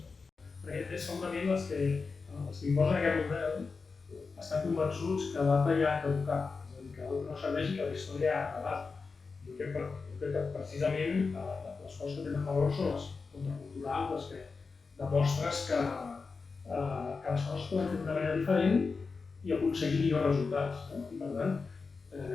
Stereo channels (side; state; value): right; quieter; 4.6 dB